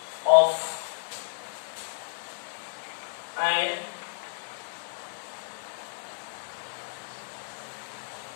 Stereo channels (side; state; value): right; silent; digital silence